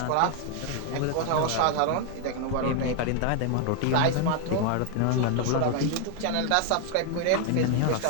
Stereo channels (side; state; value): both; different; correlation 0.01